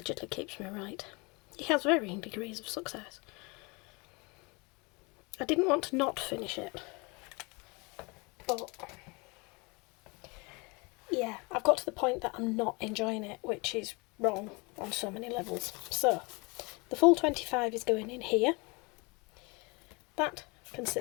keeps me right. He has varying degrees of success. I didn't want to not finish it, but yeah, I've got to the point that I'm not enjoying it, which is wrong on so many levels. So, the full 25 is going in here. That can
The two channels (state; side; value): quieter; right; 28.2 dB